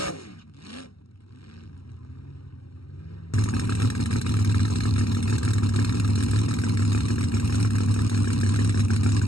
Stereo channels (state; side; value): late; right; 0.75 ms